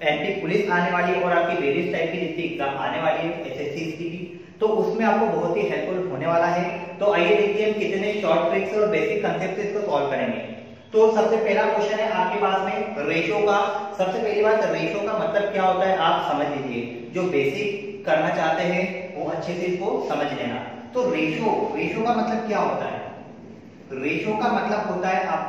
एंटी पुलिस आने वाली है और आपकी वेरियस टाइप की जितनी एग्जाम आने वाली है एसएससी की, तो उसमें आपको बहुत ही हेल्पफुल होने वाला है। तो आइए देखिए हम कितने शॉर्ट ट्रिक्स और बेसिक कांसेप्ट से इसको सॉल्व करेंगे। तो सबसे पहला क्वेश्चन है आपके पास में रेशियो का। सबसे पहली बात, रेशियो का मतलब क्या होता है आप समझ लीजिए। जो बेसिक करना चाहते हैं वो अच्छे से इसको समझ लेना। तो रेशियो का मतलब क्या होता है? रेशियो का मतलब होता है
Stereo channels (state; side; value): identical; both; correlation 1.00